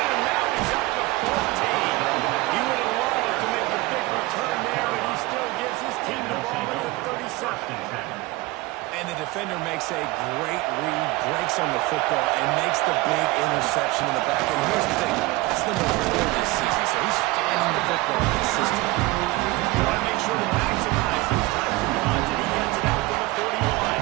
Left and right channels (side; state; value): left; quieter; 20.9 dB